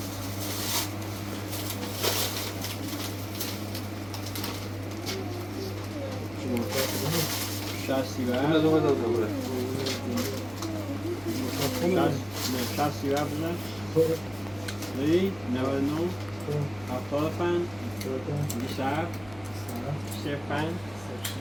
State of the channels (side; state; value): right; noise; hum, 20 dB below the sound